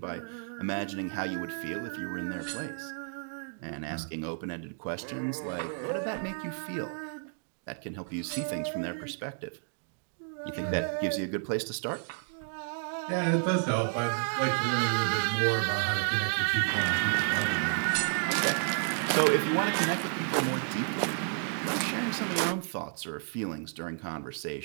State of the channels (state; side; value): silent; left; 57 dB below the other